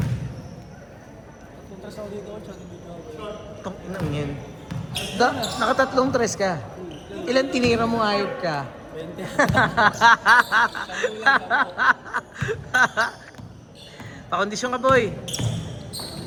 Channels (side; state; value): both; identical; correlation 1.00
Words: Punta sa dito, tsaka dito. Tong inang yan. Nakatatlong tres ka. Ilan tinira mo ayop ka? 20. Pakondisyon ka, boy.